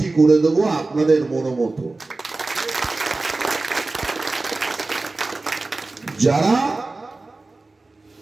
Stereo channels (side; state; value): left; quieter; 3.4 dB